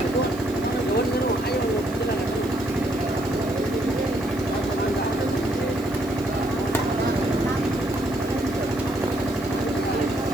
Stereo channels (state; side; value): noise; right; hiss, 21 dB below the sound